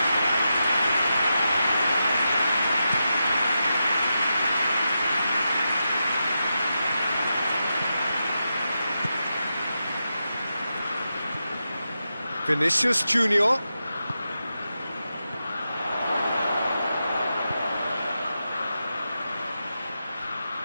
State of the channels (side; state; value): both; inverted; correlation -0.88